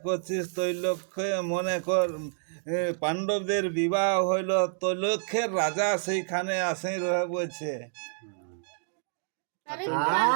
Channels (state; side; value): silent; left; digital silence